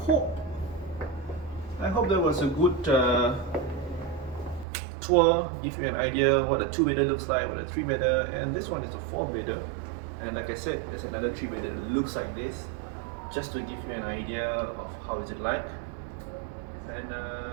hope that was a good tour. Give you an idea what a 2-bedder looks like, what a 3-bedder, and this one is a 4-bedder. And like I said, there's another 3-bedder that looks like this, just to give you an idea of how is it like. And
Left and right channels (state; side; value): drops out; left; at 4.7 s